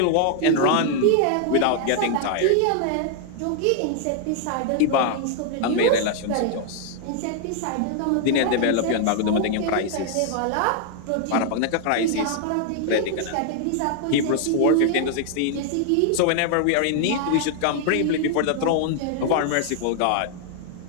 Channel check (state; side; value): different; both; correlation 0.00